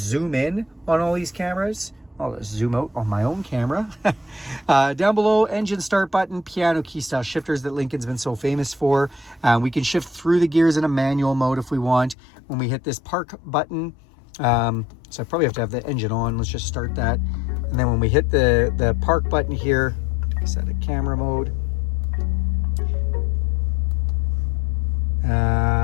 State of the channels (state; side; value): drops out; right; at 12.2 s